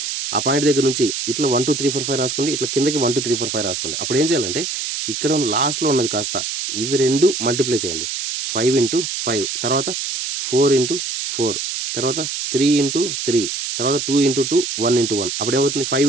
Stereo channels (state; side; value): noise; right; hiss, 3 dB below the sound